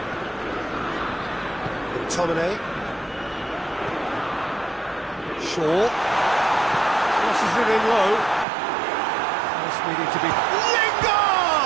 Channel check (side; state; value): left; drops out; at 8.5 s